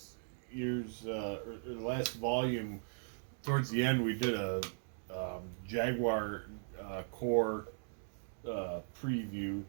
the last volume, towards the end, we did a Jaguar Core preview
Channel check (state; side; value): silent; left; digital silence